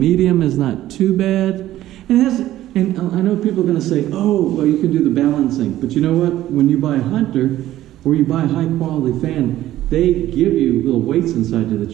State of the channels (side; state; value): left; quieter; 14.0 dB